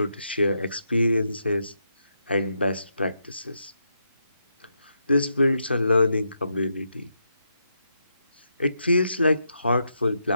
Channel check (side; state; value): both; inverted; correlation -0.83